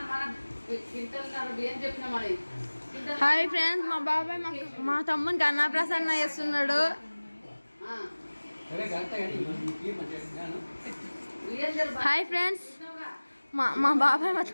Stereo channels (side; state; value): both; inverted; correlation -1.00